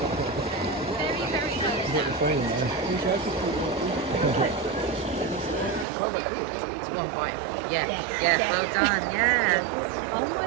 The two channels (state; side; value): drops out; left; at 5.9 s